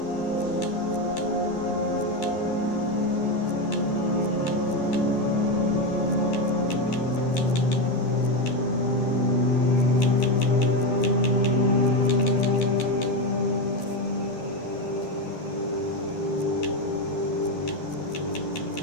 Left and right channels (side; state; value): right; late; 12 ms